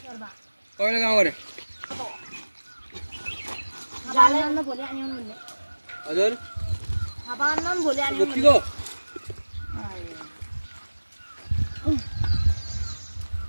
कहिले गाउँ गरे हजुर गोप्तीको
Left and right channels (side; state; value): both; inverted; correlation -1.00